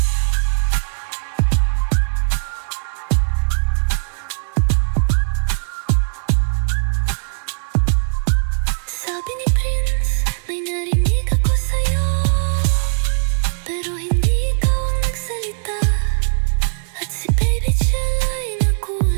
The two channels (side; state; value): left; silent; 58 dB below the other